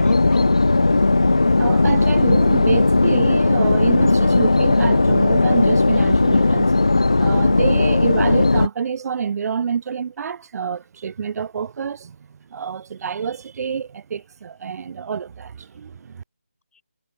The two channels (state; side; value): inverted; both; correlation -0.91